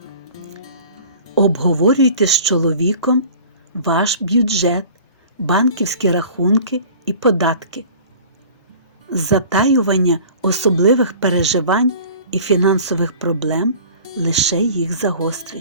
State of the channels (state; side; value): inverted; both; correlation -0.45